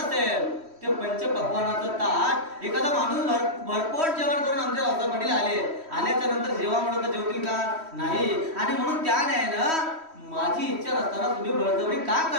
ते पंचपक्वानाचं ताट एखादा माणूस भरपोट जेवण करून आमच्या रस्त्याकडे आल्याच्या नंतर जेव्हा म्हणत जेवतील का? नाही. आणि म्हणून त्या न्यायानं माझी इच्छा नसताना तुम्ही बळजबरी का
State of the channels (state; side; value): late; left; 3.1 ms